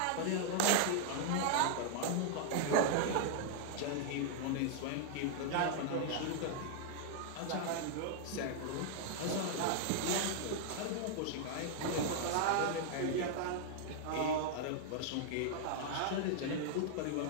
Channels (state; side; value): different; both; correlation 0.00